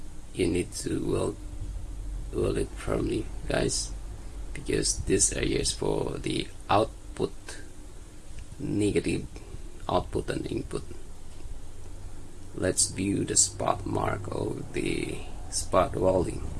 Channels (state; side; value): identical; both; correlation 1.00